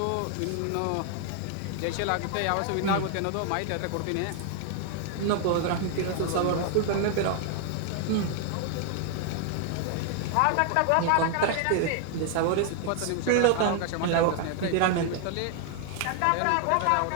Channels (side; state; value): both; different; correlation 0.00